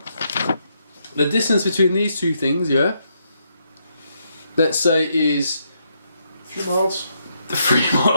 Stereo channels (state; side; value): inverted; both; correlation -0.77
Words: the distance between these 2 things, yeah. Let's say is a few miles. 3